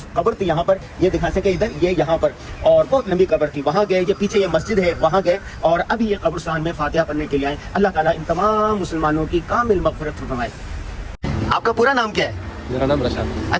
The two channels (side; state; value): both; identical; correlation 1.00